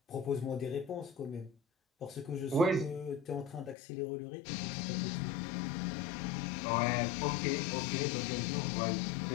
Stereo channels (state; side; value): drops out; right; at 3.8 s